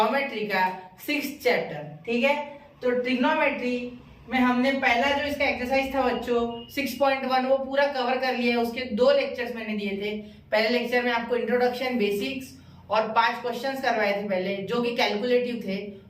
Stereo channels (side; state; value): both; identical; correlation 1.00